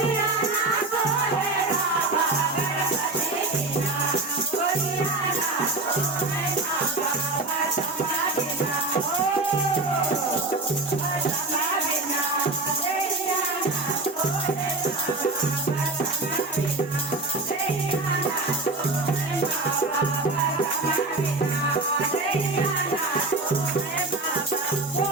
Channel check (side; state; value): left; quieter; 3.2 dB